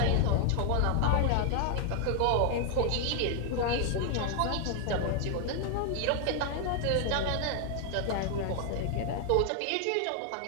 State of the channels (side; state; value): both; different; correlation 0.00